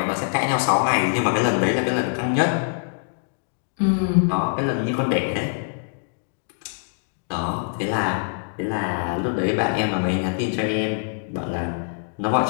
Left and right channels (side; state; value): right; silent; digital silence